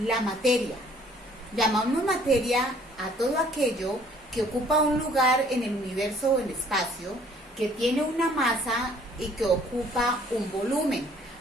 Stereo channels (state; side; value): normal; both; correlation 0.58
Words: La materia. Llamamos materia a todo aquello que ocupa un lugar en el universo o en el espacio, que tiene una masa y que ocupa un volumen.